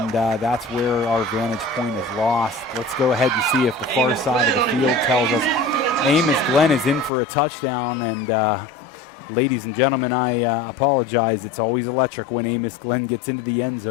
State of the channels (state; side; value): drops out; right; at 7.1 s